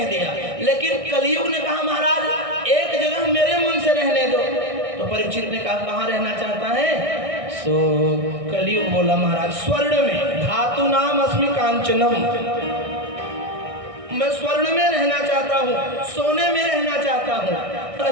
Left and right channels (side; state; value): left; late; 1.6 ms